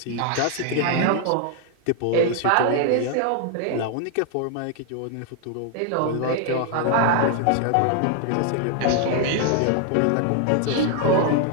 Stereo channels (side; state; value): both; different; correlation 0.00